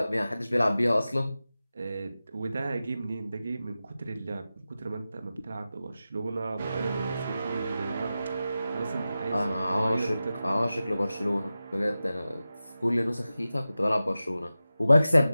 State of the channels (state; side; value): inverted; both; correlation -0.94